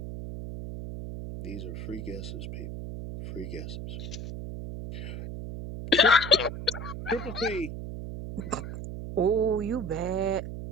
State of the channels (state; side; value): noise; right; hum, 7 dB below the sound